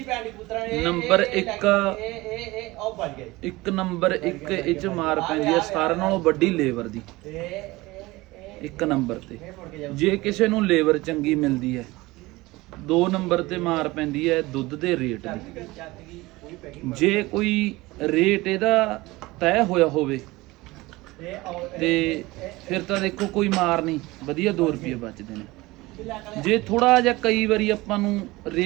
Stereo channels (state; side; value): quieter; left; 20.6 dB